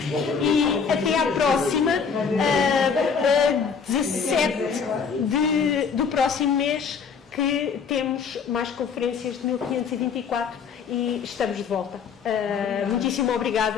e até à próxima, 17 do próximo mês, que temos mais conferências de 1524 e estamos de volta. Muitíssimo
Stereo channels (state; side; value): quieter; right; 6.1 dB